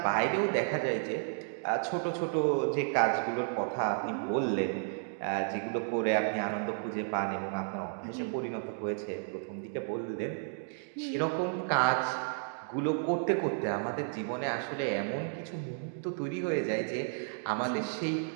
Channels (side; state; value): left; silent; digital silence